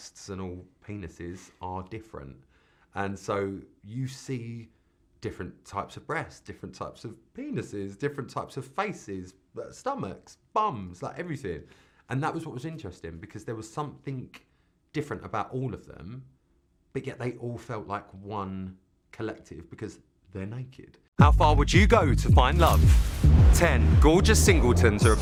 and all penises are different. And so you see different types of breasts, different types of penises, different types of faces, stomachs, bums, like everything. And that was what was interesting, because there was something different about all of them, but yet they all felt like one collective because they're naked. How far would you go to find love? 10 gorgeous singletons are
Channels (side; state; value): both; identical; correlation 1.00